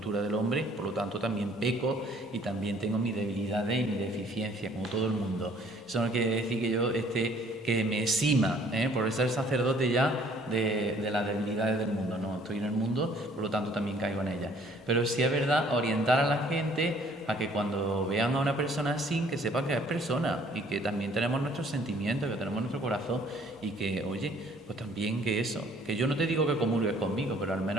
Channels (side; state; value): both; normal; correlation 0.59